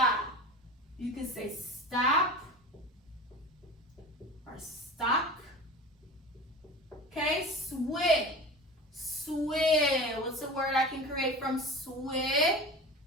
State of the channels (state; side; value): normal; both; correlation 0.33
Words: You can say stop or stock. Okay, swig. What's a word I can create from swig?